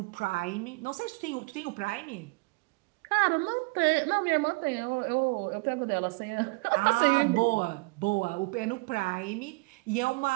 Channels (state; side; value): quieter; left; 27.8 dB